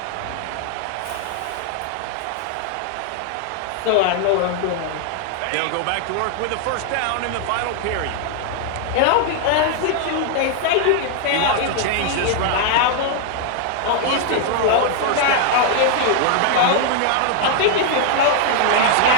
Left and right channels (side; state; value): both; different; correlation 0.00